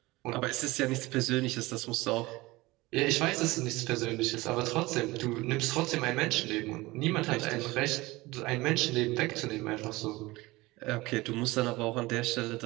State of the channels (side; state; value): left; quieter; 20.7 dB